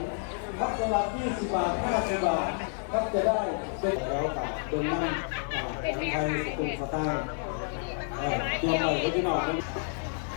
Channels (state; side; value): silent; right; 58 dB below the other